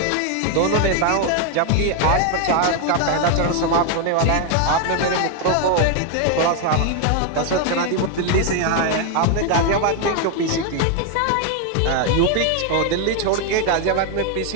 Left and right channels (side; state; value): both; different; correlation 0.01